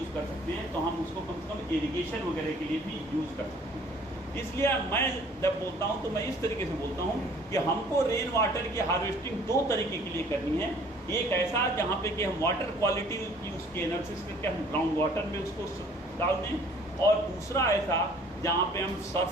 कर सकते हैं, तो हम उसको कम से कम इरिगेशन वगैरह के लिए भी यूज़ कर सकते हैं। इसलिए मैं जब बोलता हूँ तो मैं इस तरीके से बोलता हूँ कि हमको रेन वाटर की हार्वेस्टिंग दो तरीके के लिए करनी है। एक ऐसा जहाँ पे कि हम वाटर क्वालिटी की उसकी एनालिसिस करके हम ग्राउंड वाटर में उसको डाल दें, और दूसरा ऐसा जहाँ पे हम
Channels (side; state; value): both; normal; correlation 0.55